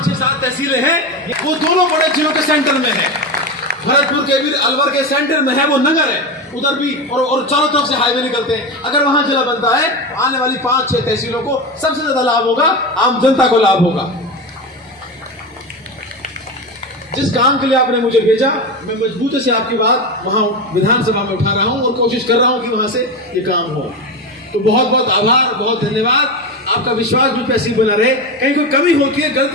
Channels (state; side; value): normal; both; correlation 0.19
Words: 6, 7 तहसीलें हैं, वो दोनों बड़े जिलों के सेंटर में है। भरतपुर के भी अलवर के सेंटर में है वो नगर है, उधर भी और चारों तरफ से हाईवे निकलते हैं। अगर वहां जिला बनता है, आने वाली 5, 6 तहसीलों को सबसे ज्यादा लाभ होगा, आम जनता को लाभ होगा। जिस काम के लिए आपने मुझे भेजा, मैं मजबूती से आपकी बात वहां विधानसभा में उठा रहा हूं और कोशिश कर रहा हूं कि वहां से ये काम हो। तो बहुत बहुत आभार, बहुत धन्यवाद। आपका विश्वास मुझ पे ऐसी बना रहे। कहीं कोई कमी होती है,